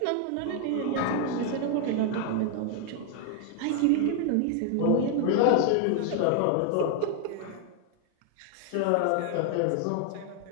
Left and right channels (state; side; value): different; both; correlation 0.00